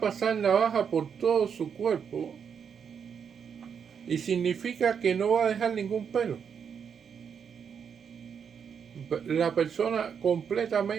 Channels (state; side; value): quieter; left; 7.1 dB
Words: navaja por todo su cuerpo y significa que no va a dejar ningún pelo. La persona